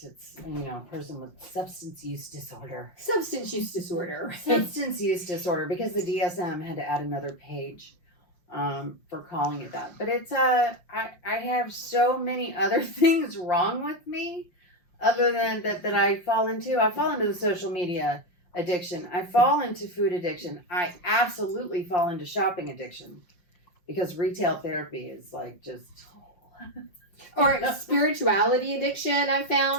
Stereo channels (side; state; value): right; late; 5.7 ms